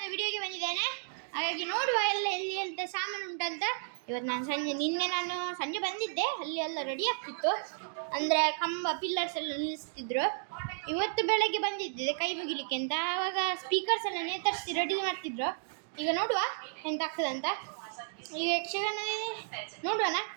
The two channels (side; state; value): left; silent; digital silence